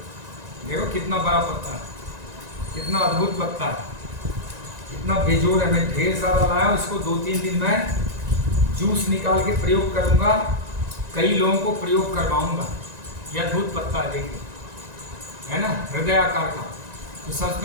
देखो कितना बड़ा पत्ता है, कितना अद्भुत पत्ता है, इतना बेजोड़ है। मैं ढेर सारा लाया हूँ, इसको 2-3 दिन में जूस निकाल के प्रयोग करूंगा, कई लोगों को प्रयोग करवाऊंगा। यह अद्भुत पत्ता है, देखिए, है ना, हृदय आकार का। तो सबसे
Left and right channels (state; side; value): late; left; 1.9 ms